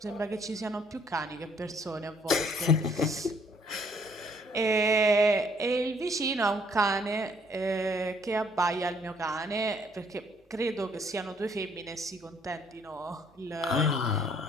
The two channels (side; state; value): both; normal; correlation 0.65